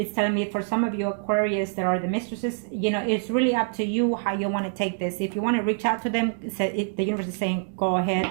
telling me for some of you Aquarius that are the Mistresses, you know, it's really up to you how you want to take this. If you want to reach out to them, the universe is saying, go ahead,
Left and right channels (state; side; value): silent; left; digital silence